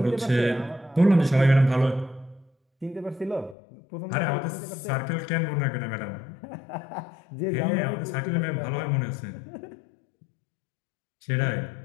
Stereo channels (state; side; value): drops out; right; at 3.6 s